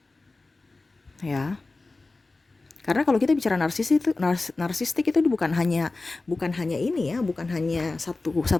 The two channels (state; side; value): quieter; right; 3.4 dB